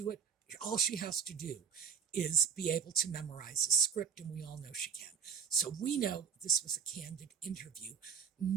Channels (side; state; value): left; quieter; 6.8 dB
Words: it. All she has to do is be able to memorize a script, and we all know she can. So we know this was a candid interview,